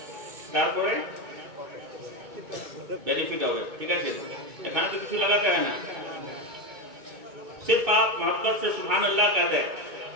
کارپوریٹ بینیفٹ ہوگا، ٹھیک ہے؟ کھانا تو کچھ لگاتے ہیں نا، صرف آپ محبت سے سبحان اللہ کہتے ہیں۔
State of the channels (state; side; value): late; left; 2.2 ms